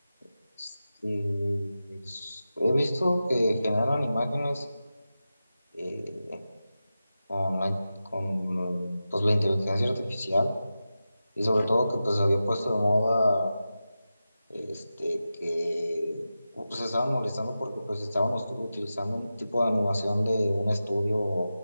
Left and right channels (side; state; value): both; inverted; correlation -0.93